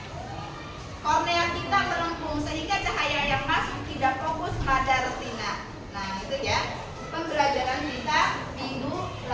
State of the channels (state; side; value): identical; both; correlation 1.00